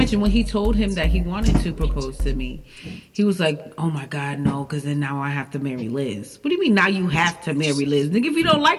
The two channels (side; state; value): both; identical; correlation 1.00